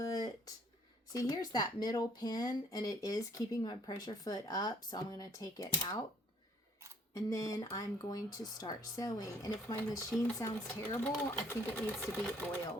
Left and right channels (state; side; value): normal; both; correlation 0.62